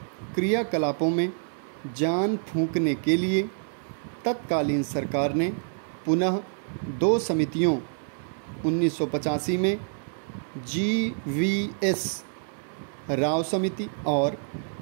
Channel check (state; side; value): silent; left; 59 dB below the other